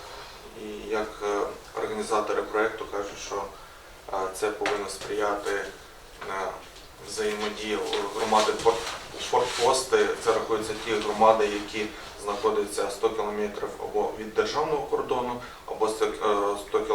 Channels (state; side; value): identical; both; correlation 1.00